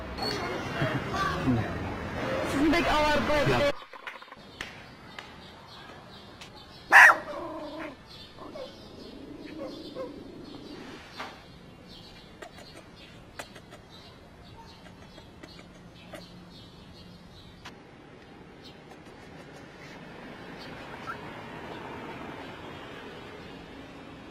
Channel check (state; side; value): identical; both; correlation 1.00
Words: Sizni bek avar qo'ydim.